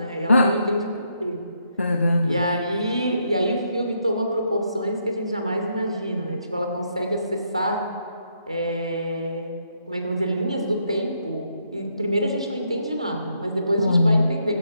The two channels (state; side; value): inverted; both; correlation -0.76